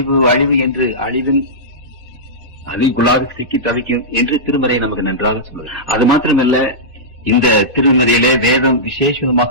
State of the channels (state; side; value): normal; both; correlation -0.14